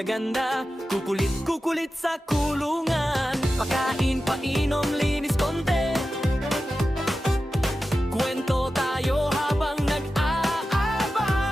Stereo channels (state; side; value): normal; both; correlation 0.93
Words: kukulit sa kulungan. Pakain, painom, linis konti. Kwento tayo habang